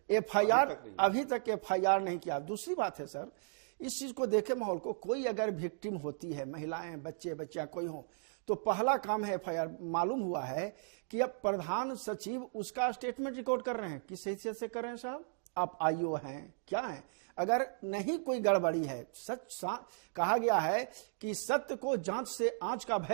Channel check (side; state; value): left; silent; digital silence